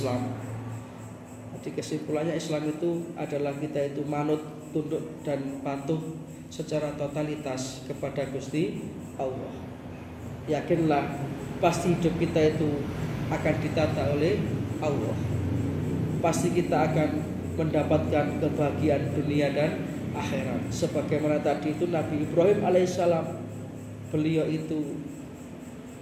Jadi kesimpulannya Islam itu adalah kita itu manut, tunduk dan patuh secara totalitas kepada Gusti Allah. Yakinlah pasti hidup kita itu akan ditata oleh Allah. Pasti kita akan mendapatkan kebahagiaan dunia dan akhirat. Sebagaimana tadi itu Nabi Ibrahim alaihissalam, beliau itu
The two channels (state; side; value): identical; both; correlation 1.00